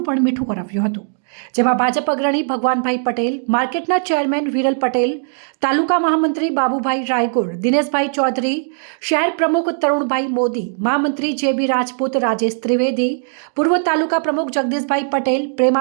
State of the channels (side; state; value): left; silent; 67 dB below the other